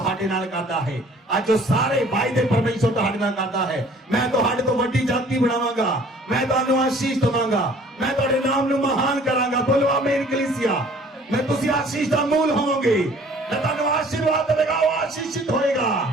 नाल करदा है, आज जो सारे वायदे परमेश्वर तुहाडे नाल करदा है। मैं तुहाडे तो वड्डी जाति बनावांगा, मैं तुहानू आशीष दवांगा, मैं तुहाडे नाम नू महान करांगा। बोलो आमीन कलीसिया। मैं तुसी आशीष दा मूल होवोगे। जे तुहानू आशीर्वाद देगा वो आशीषित होएगा,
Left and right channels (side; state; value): both; normal; correlation 0.53